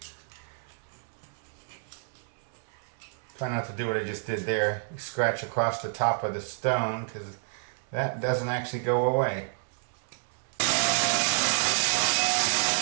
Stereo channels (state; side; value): silent; left; digital silence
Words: Try not to do what I just did there. Scratch across the top of the stone, because that doesn't actually go away.